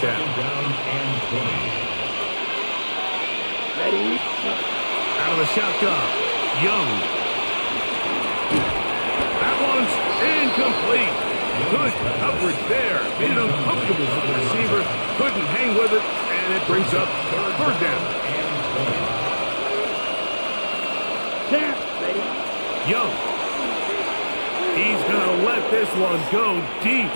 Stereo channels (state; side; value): inverted; both; correlation -1.00